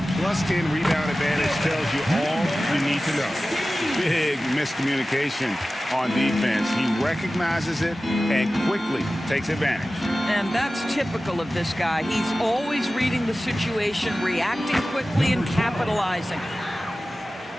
+10 rebound advantage tells you all you need to know. Big miscommunication on defense. He recognizes it and quickly takes advantage. And that's typical of this guy. He's always reading the situation, reacting quickly, and capitalizing.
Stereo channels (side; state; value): both; normal; correlation 0.96